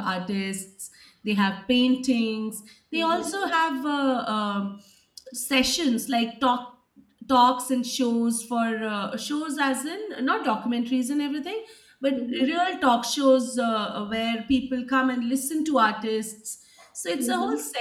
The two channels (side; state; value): both; identical; correlation 1.00